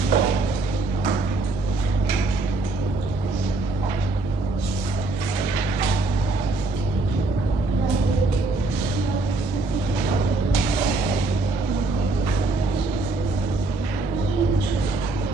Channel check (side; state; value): left; quieter; 3.0 dB